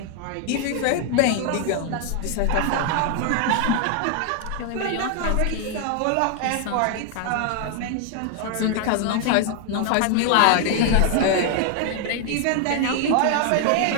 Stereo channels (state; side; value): different; both; correlation 0.00